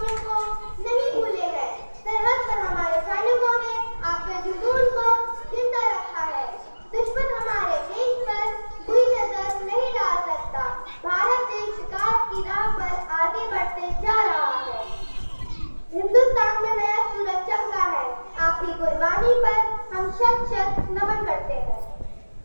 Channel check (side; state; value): both; inverted; correlation -1.00